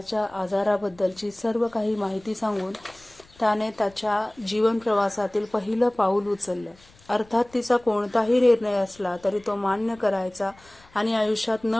आजाराबद्दलची सर्व काही माहिती सांगून त्याने त्याच्या जीवन प्रवासातील पहिलं पाऊल उचललं. अर्थात तिचा कोणताही निर्णय असला तरी तो मान्य करायचा आणि आयुष्यात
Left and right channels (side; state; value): left; noise; rumble, 28 dB below the sound